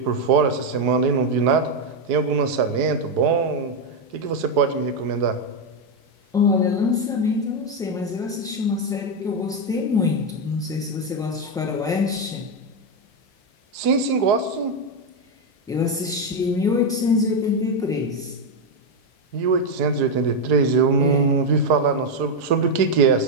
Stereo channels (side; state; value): both; normal; correlation 0.05